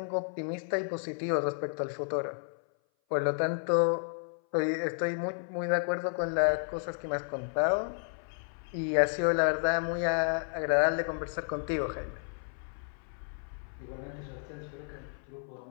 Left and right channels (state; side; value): silent; right; 56 dB below the other